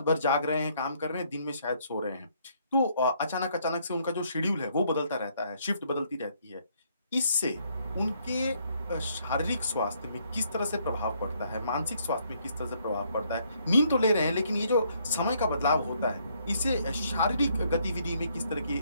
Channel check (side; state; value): both; inverted; correlation -0.69